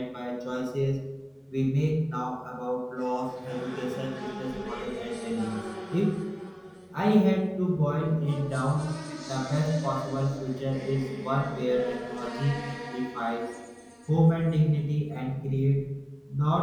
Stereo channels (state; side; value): identical; both; correlation 1.00